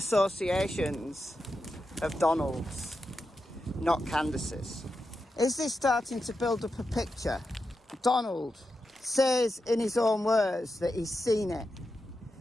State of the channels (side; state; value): both; normal; correlation 0.88